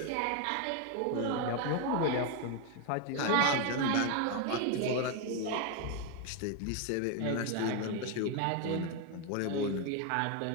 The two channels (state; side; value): different; both; correlation 0.01